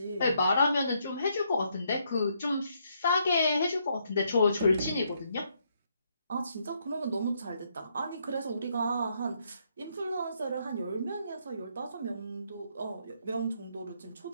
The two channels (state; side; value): inverted; both; correlation -0.74